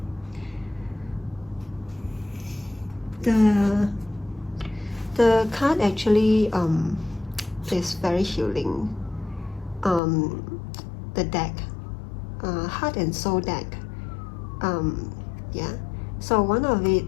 The card actually is very healing. The deck, Heart and Soul deck. Yeah. So one of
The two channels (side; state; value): right; drops out; at 10.0 s